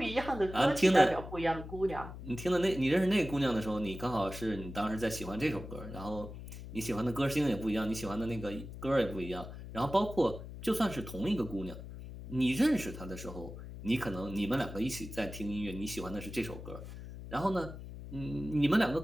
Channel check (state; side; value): noise; left; hum, 11 dB below the sound